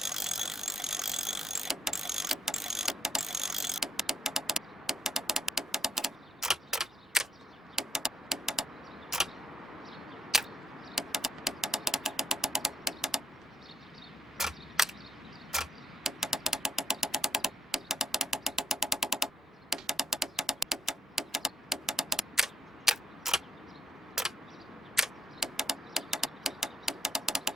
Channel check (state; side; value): normal; both; correlation 0.77